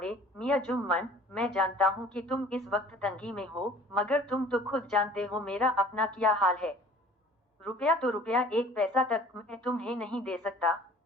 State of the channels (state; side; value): normal; both; correlation 0.50